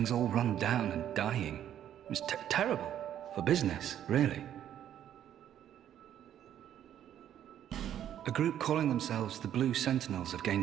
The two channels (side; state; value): left; quieter; 10.6 dB